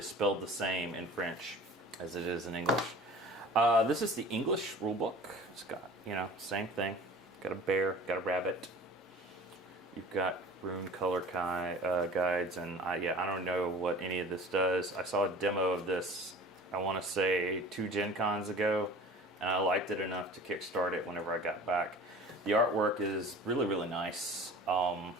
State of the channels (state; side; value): normal; both; correlation 0.43